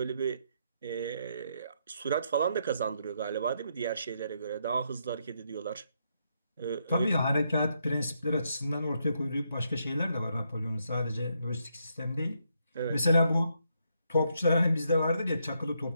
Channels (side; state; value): both; inverted; correlation -0.77